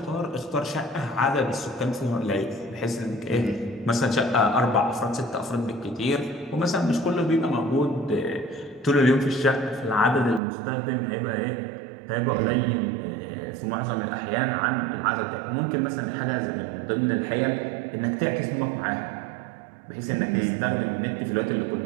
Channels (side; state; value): left; drops out; at 10.4 s